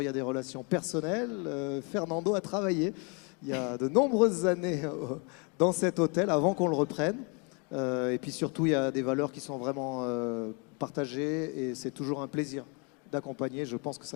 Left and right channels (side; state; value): right; quieter; 33.7 dB